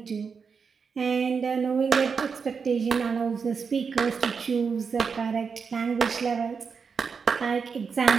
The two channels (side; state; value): left; quieter; 5.7 dB